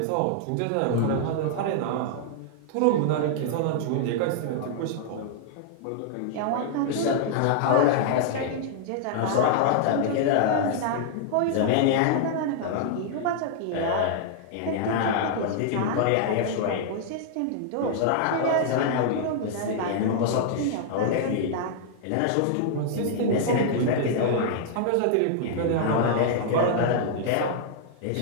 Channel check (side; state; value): both; different; correlation -0.01